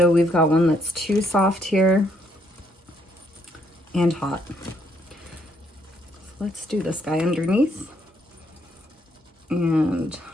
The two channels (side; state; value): both; normal; correlation 0.71